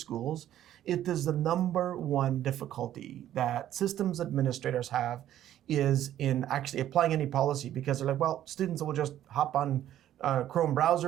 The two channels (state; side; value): quieter; left; 12.0 dB